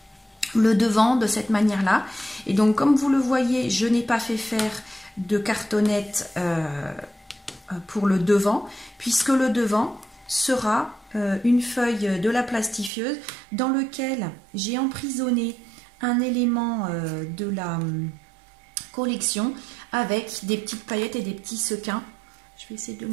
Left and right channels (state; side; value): drops out; left; at 12.9 s